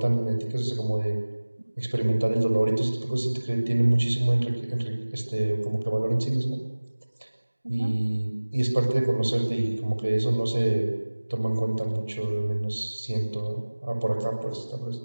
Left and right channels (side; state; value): both; inverted; correlation -1.00